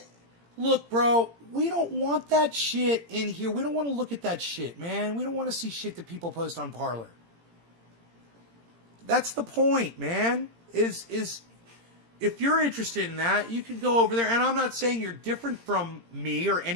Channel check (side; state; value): left; late; 17 ms